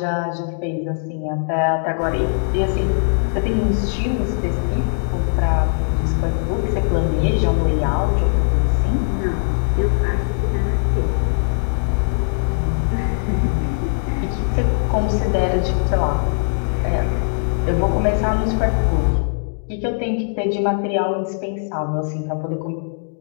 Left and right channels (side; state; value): right; silent; digital silence